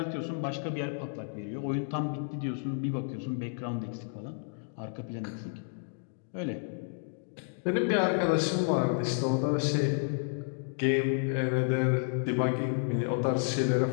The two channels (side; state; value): right; silent; digital silence